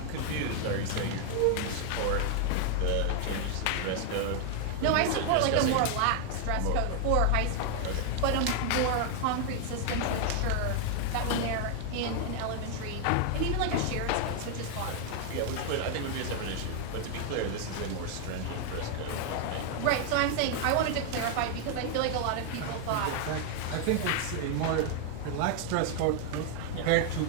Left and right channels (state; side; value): different; both; correlation 0.00